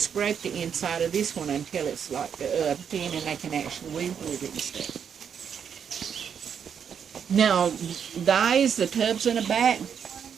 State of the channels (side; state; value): left; quieter; 7.6 dB